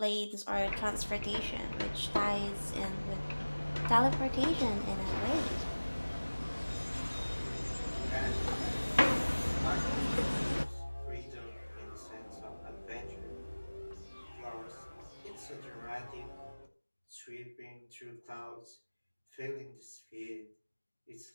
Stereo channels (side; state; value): both; inverted; correlation -1.00